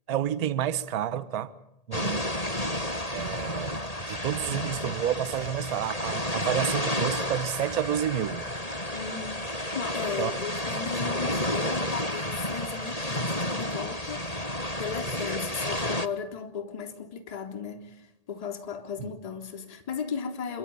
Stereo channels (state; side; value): late; right; 1.8 ms